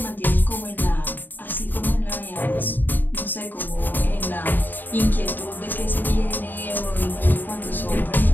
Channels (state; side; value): late; right; 0.090 ms